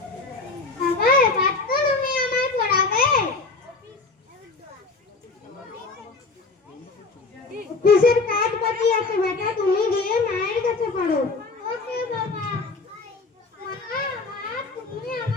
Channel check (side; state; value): right; quieter; 3.8 dB